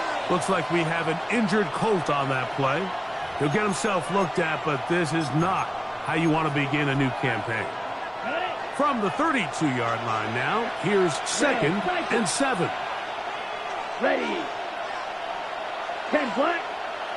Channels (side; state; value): both; identical; correlation 1.00